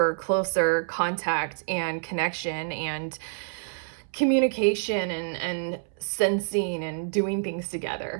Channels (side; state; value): left; silent; 60 dB below the other